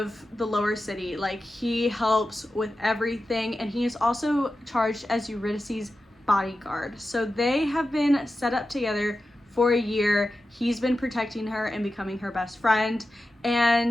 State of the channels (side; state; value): both; normal; correlation 0.92